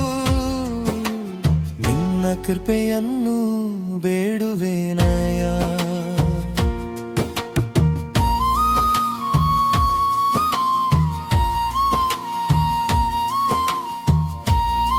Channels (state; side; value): identical; both; correlation 1.00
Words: ನಿನ್ನ ಕೃಪೆಯನ್ನು ಬೇಡುವೆನಯ್ಯ.